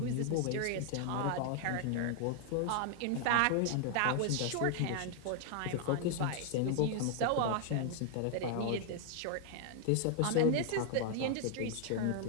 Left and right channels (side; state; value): both; different; correlation 0.00